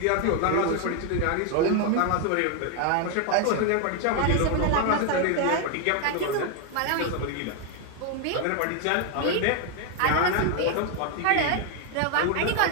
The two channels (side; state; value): both; different; correlation 0.01